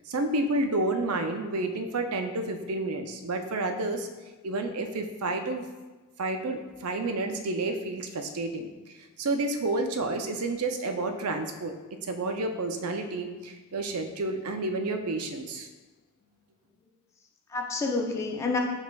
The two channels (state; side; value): normal; both; correlation 0.02